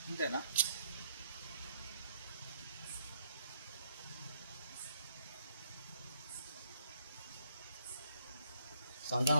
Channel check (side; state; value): both; inverted; correlation -0.71